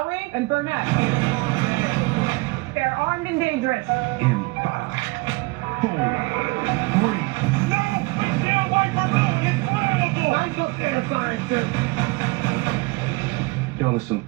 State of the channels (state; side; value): quieter; left; 24.7 dB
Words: and Burnett. They're armed and dangerous. In 5, 4, 3. No! We can't wait for nothing! It's flammable! Lights up there, scientist! Y'all are some